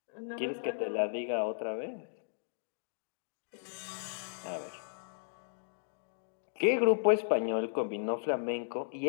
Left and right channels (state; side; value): silent; right; digital silence